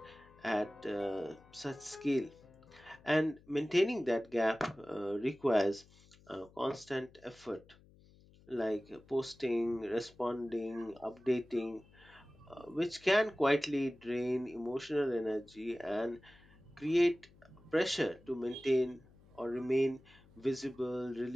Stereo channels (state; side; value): noise; left; hum, 26 dB below the sound